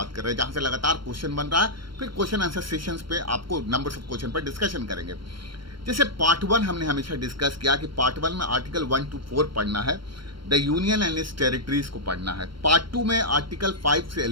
कर रहे हैं, जहां से लगातार क्वेश्चन बन रहा है। फिर क्वेश्चन आंसर सेशंस पे आपको नंबर्स ऑफ क्वेश्चन पर डिस्कशन करेंगे। जैसे पार्ट 1 हमने हमेशा डिस्कस किया कि पार्ट 1 में आर्टिकल 1 to 4 पढ़ना है, the union and it's territories को पढ़ना है। पार्ट 2 में आर्टिकल 5 से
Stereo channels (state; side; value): late; left; 0.73 ms